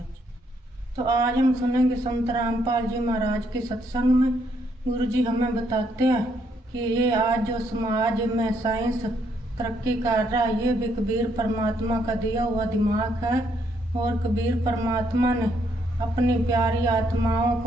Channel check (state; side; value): normal; both; correlation 0.72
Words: जी। तो आज हम सुनेंगे संत रामपाल जी महाराज के सत्संग में गुरु जी हमें बताते हैं कि ये आज जो समाज में साइंस तरक्की कर रहा है, ये भी कबीर परमात्मा का दिया हुआ दिमाग है। और कबीर परमात्मा ने अपनी प्यारी आत्माओं